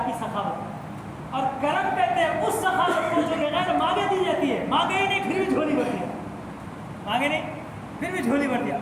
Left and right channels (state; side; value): identical; both; correlation 1.00